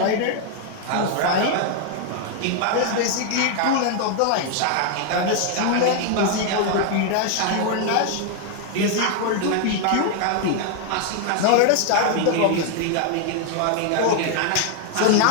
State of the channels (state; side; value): different; both; correlation 0.00